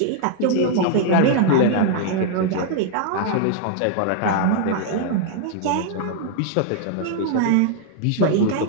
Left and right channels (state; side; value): different; both; correlation -0.01